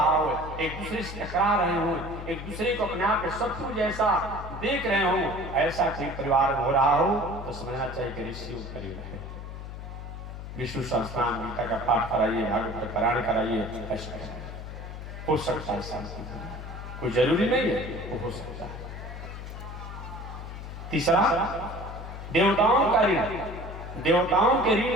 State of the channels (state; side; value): noise; left; hum, 10 dB below the sound